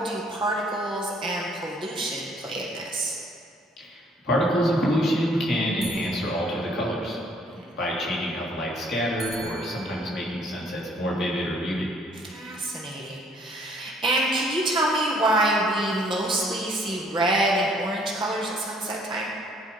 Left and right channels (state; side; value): normal; both; correlation 0.62